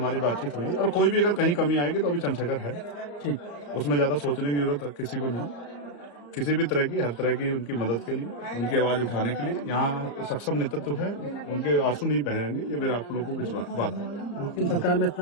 बातचीत हुई। और कोई भी अगर कहीं कमी आएगी तो अभी चंद्रशेखर है, उसमें ज्यादा सोचने की जरूरत किसी को नहीं। किसी भी तरह की, हर तरह की उनकी मदद के लिए, उनकी आवाज उठाने के लिए यहाँ सक्षम नेतृत्व है। उनके आंसू नहीं बहेंगे, ये मेरा आप लोगों को विश्वास बात है। सरकार में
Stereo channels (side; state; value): right; late; 34 ms